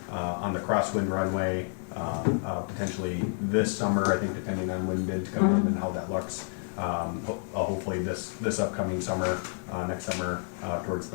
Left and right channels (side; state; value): right; silent; 57 dB below the other